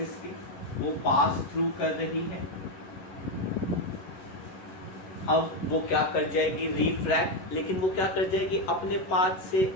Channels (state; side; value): late; right; 11 ms